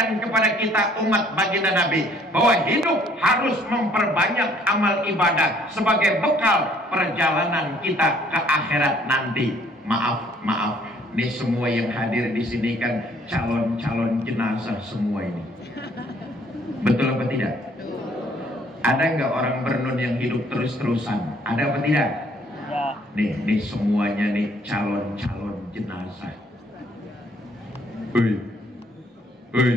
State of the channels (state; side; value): normal; both; correlation 0.61